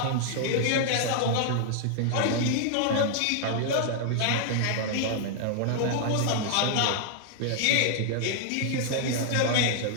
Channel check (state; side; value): different; both; correlation -0.01